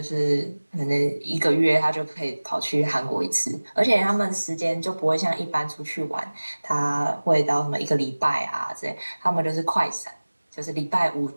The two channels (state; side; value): inverted; both; correlation -1.00